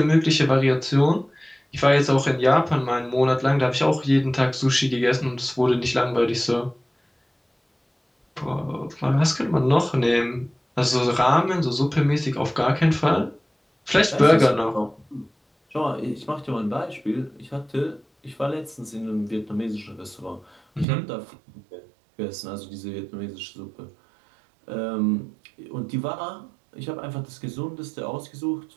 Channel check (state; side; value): drops out; left; at 20.9 s